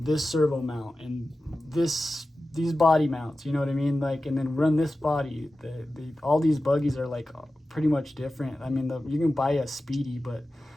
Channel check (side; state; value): both; normal; correlation 0.94